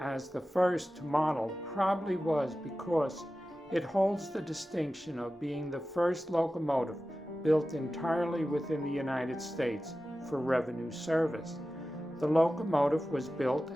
the first to model probably was because it holds the distinction of being the first locomotive built entirely within the United States for revenue service. The locomotive was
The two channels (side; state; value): both; normal; correlation 0.94